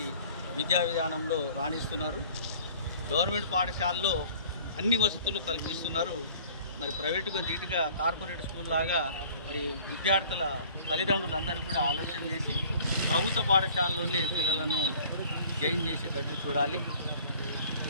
విద్యా విధానంలో రాణిస్తున్నారు. గవర్నమెంట్ పాఠశాలలో అన్ని వసతులు కల్పిస్తున్నారు. మరి ప్రైవేటుగా నీట్గా కార్పొరేట్ స్కూల్ లాగా మరి విద్యార్థుల తల్లిదండ్రులందరూ కూడా ఆలోచన చేసి ప్రభుత్వ పాఠశాలలోనే పిల్లలను జాయిన్ చేసేటట్టు చూడాలి.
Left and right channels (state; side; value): inverted; both; correlation -0.51